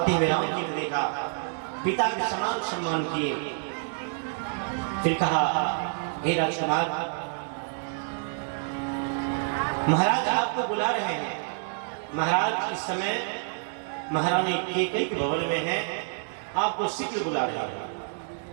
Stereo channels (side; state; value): left; silent; 59 dB below the other